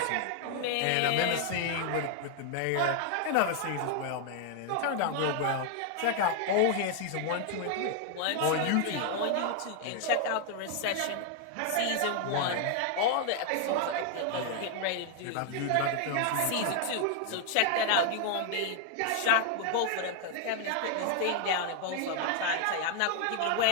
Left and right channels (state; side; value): different; both; correlation 0.00